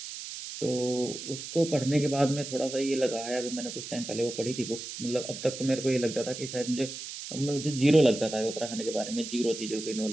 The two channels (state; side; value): noise; right; hiss, 9 dB below the sound